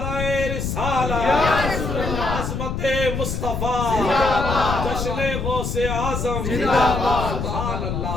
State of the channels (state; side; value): noise; left; rumble, 3 dB below the sound